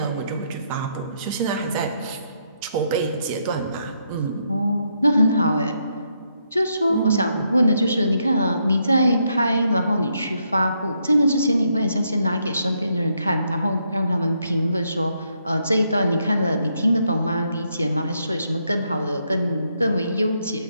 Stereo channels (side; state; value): both; inverted; correlation -0.76